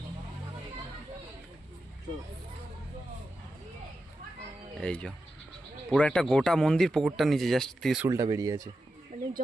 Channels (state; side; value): normal; both; correlation 0.90